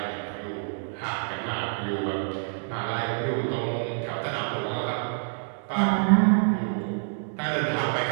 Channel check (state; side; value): silent; left; digital silence